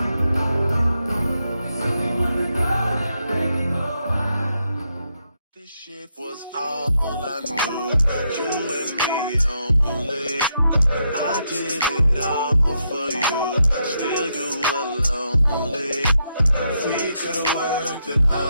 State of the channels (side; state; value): both; inverted; correlation -0.81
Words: This shit was all I knew. You and me only. I did it all for you. Still you were lonely. We could've worked it